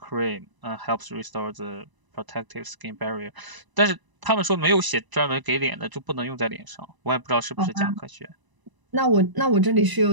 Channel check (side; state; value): left; late; 1.0 ms